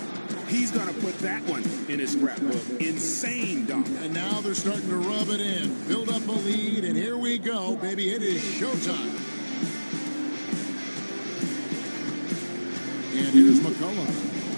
He's going to put that one in his scrapbook. Insane dunk. And now they're starting to rub it in. Build up a lead, and here we go, baby. It is showtime. And here's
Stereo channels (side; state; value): both; inverted; correlation -1.00